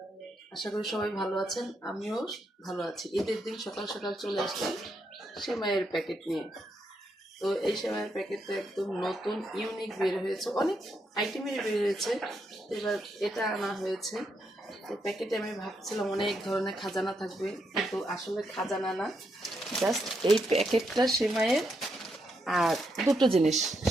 আশা করি সবাই ভালো আছেন, আমিও ভালো আছি। ঈদের দিন সকাল সকাল চলে আসলাম সেমাইয়ের প্যাকেট নিয়ে। তো এই সেমাইয়ের প্যাকেটটা একদম নতুন ইউনিক বের হয়েছে, অনেক আইটেমের বের হয়েছে। এবার এটা আনা হয়েছে। তো প্যাকেটে আমি ভাবছিলাম অনেক ধরনের খাজানা থাকবে, কিন্তু আসলে খাজানা না, জাস্ট এই প্যাকেটটা সেমাইয়ের আর দুটো জিনিস,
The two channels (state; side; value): normal; both; correlation 0.80